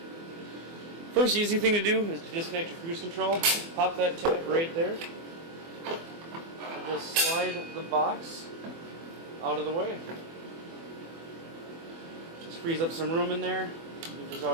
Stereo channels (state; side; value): late; left; 24 ms